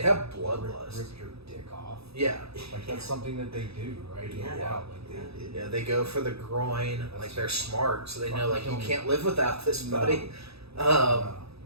have bloodlust. Rip your dick off. Yeah, like that's something that they do, right? Yeah, they go for the groin. Like they're smart, so they know like you can't live without this, buddy. And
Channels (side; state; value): left; late; 0.78 ms